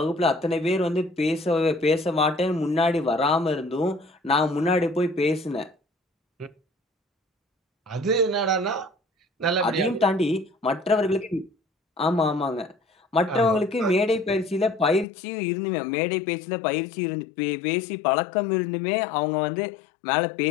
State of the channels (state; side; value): drops out; right; at 15.1 s